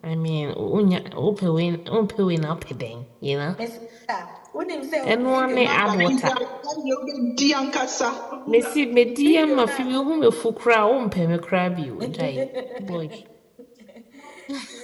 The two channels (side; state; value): both; identical; correlation 1.00